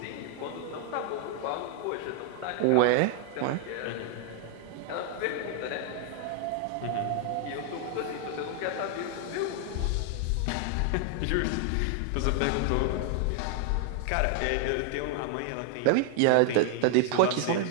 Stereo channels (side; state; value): both; different; correlation 0.00